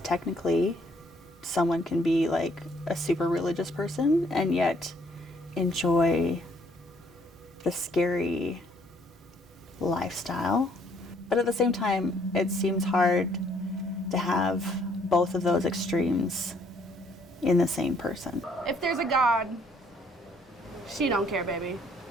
technically someone can be like a super religious person and yet enjoy the scary lifestyle. But at the same time, it seems hard to have both of those extremes in the same person. If there's a God, she don't care, baby.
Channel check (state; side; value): normal; both; correlation 0.65